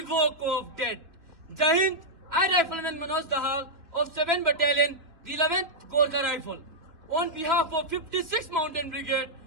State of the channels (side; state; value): left; late; 2.9 ms